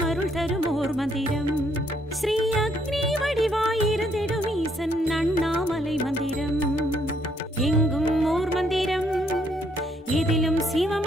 அருள் தரும் ஓர் மந்திரம். ஸ்ரீ அக்னி வடிவாயிருந்திடும் ஈசன் அண்ணாமலை மந்திரம். எங்கும் ஓர் மந்திரம், எதிலும்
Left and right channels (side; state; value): both; normal; correlation 0.70